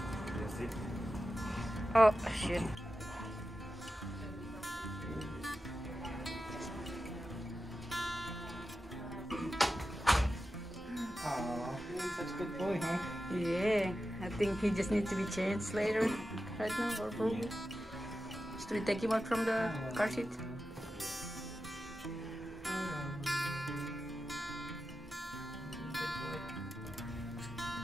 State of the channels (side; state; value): both; normal; correlation 0.92